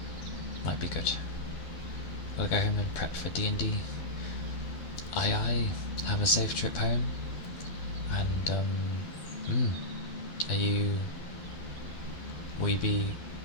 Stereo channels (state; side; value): late; right; 12 ms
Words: Might be good. We'll go home and prep for D&D. Aye, have a safe trip home. And, will you be